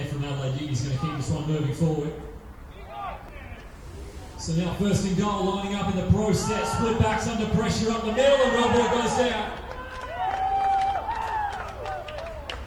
from Adelaide. He's going to keep this one moving forward. So now first and goal, lining up in the process. Split backs under pressure up the middle and Wellborn goes down.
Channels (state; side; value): identical; both; correlation 1.00